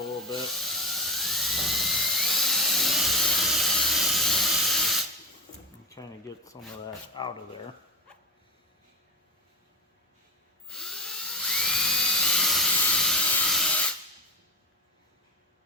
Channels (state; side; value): normal; both; correlation 0.21